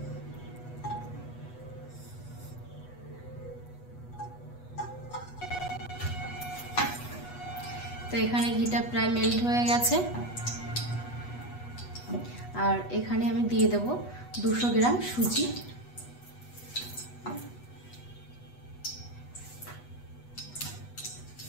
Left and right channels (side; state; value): right; late; 8.2 ms